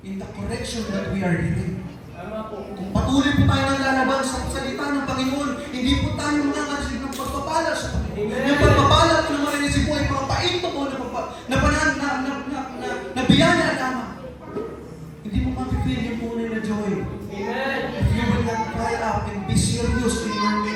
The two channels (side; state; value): both; identical; correlation 1.00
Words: in the correction that we are giving. Kung patuloy po tayo ng lalaban sa salita ng Panginoon, hindi po tayo makakasig ng pagpapala sa Panginoon. Yung pagpapala po naman ay po ay mga paito po na biyaya lamang. Hindi mo mapipil yung tunay na joy. If you will not cry out and be serious in your